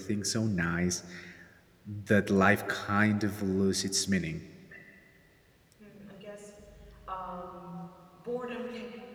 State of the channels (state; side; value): identical; both; correlation 1.00